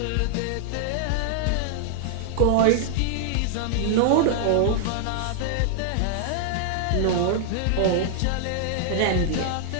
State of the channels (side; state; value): both; different; correlation -0.01